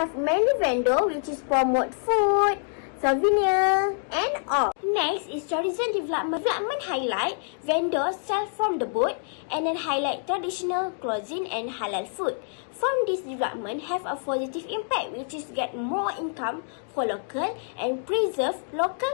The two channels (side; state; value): right; silent; digital silence